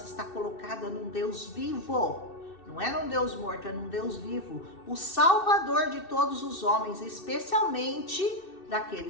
está colocada num Deus vivo. Não é num Deus morto, é num Deus vivo, o Salvador de todos os homens, especialmente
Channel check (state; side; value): late; right; 2.6 ms